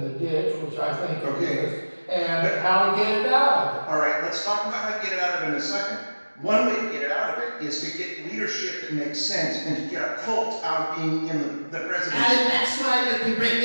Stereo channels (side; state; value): both; inverted; correlation -1.00